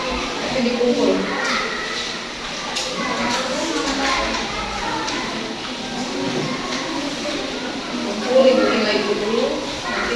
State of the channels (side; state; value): both; identical; correlation 1.00